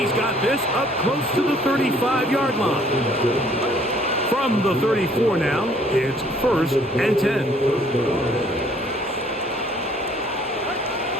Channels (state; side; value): normal; both; correlation 0.60